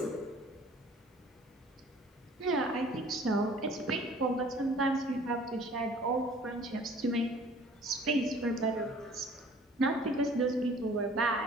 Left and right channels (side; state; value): both; normal; correlation 0.51